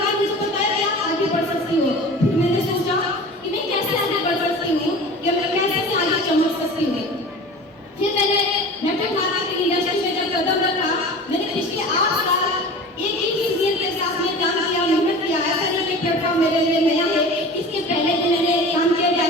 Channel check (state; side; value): normal; both; correlation 0.37